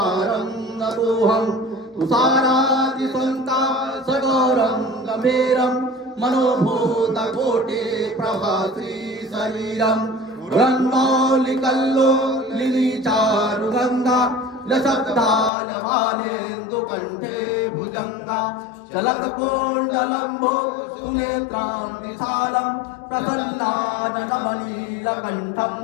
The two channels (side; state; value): right; drops out; at 15.5 s